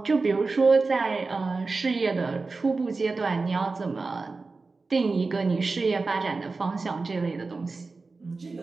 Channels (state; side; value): quieter; left; 3.9 dB